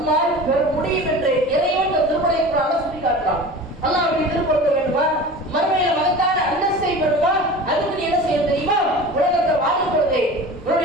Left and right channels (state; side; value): normal; both; correlation 0.36